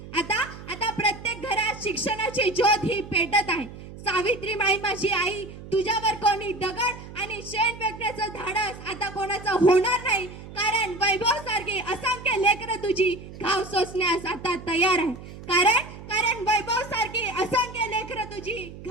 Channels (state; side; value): noise; right; hum, 14 dB below the sound